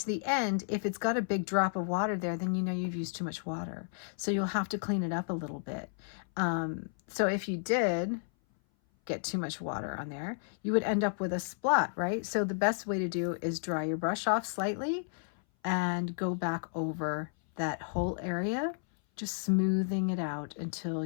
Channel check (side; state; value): right; silent; 56 dB below the other